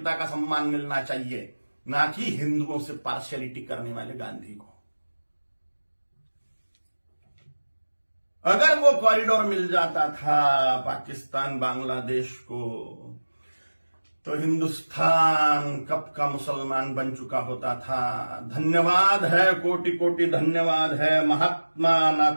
का सम्मान मिलना चाहिए, ना कि हिंदुओं से पार्शियलिटी करने वाले गांधी को। अगर वो कॉरिडोर मिल जाता था पाकिस्तान बांग्लादेश को, तो हिंदुस्तान कब का मुसलमान बन चुका होता था। धन्यवाद है, कोटि कोटि धन्यवाद है महात्मा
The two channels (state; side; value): inverted; both; correlation -1.00